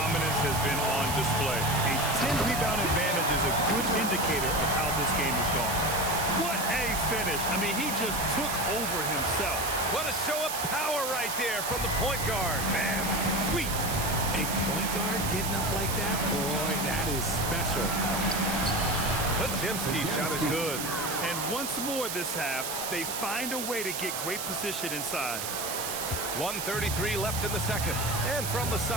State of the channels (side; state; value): right; noise; hiss, 4 dB below the sound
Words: has been on display. A 10-rebound advantage is a good indicator of how this game has gone. What a finish. I mean, he just took over himself. What a show of power right there from the point guard. Man, sweet. A point guard getting up like that? Boy, that is special. Podziemski's shot is good. And once more this half, they find a way to get great position inside. 1:33 left in the second. And from the